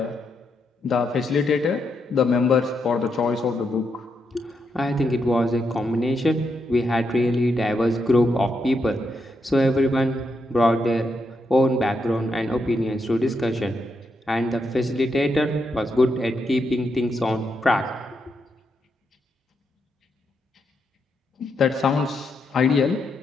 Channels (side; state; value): both; normal; correlation 0.81